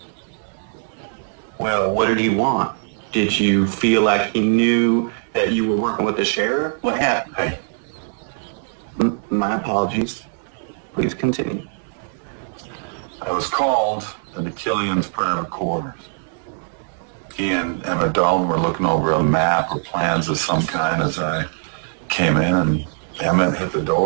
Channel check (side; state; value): left; silent; digital silence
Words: Well, what did he want? Did you feel like he knew that you were working with the sheriff? What happened? Hey, My apologies. Please continue. I was called into Killian's private quarters. He and Emmett Dalton were looking over a map or plans of some kind as I came in, and Emmett hit the